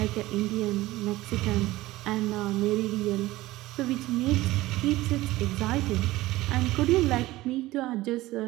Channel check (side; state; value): left; quieter; 17.8 dB